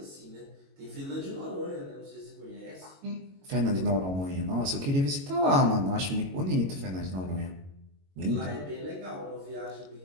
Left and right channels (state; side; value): late; left; 22 ms